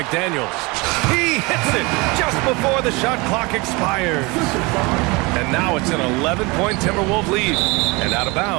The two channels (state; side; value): quieter; left; 25.7 dB